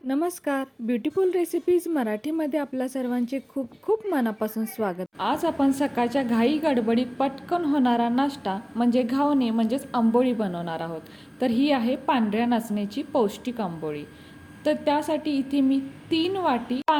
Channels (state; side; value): identical; both; correlation 1.00